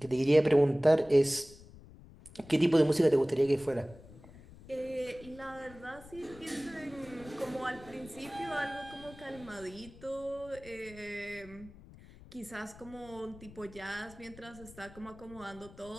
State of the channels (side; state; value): left; noise; rumble, 20 dB below the sound